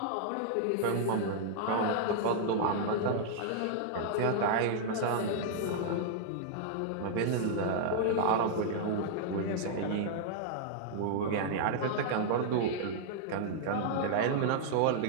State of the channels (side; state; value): both; different; correlation -0.02